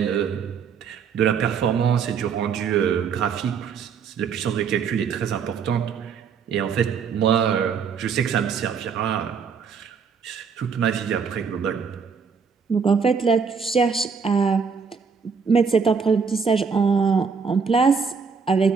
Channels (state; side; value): quieter; left; 5.9 dB